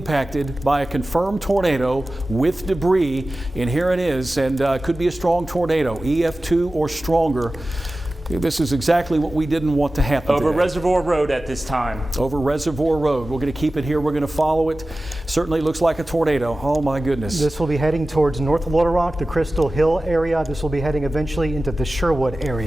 by a confirmed tornado with debris. And here it is, and could be a strong tornado, EF2 or stronger. This is exactly what we didn't want to happen Over today. Reservoir Road at this time. Over Reservoir Road. We're going to keep it here. We're going to follow it. Certainly looks like a tornado. Oh, my goodness. This will be heading towards North Little Rock, the Crystal Hill area. This will be heading eventually into the Sherwood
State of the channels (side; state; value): both; normal; correlation 0.96